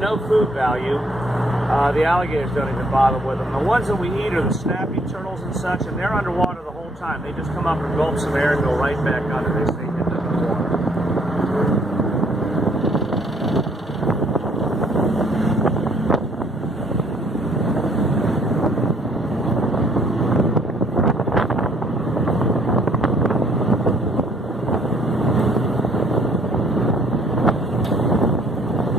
food value. The alligators don't even bother with them. The ones that we eat are the snappy turtles and such, and they're underwater the whole time. They just come up and gulp some air and go right back under. They stay hidden in the water.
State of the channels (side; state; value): both; normal; correlation 0.64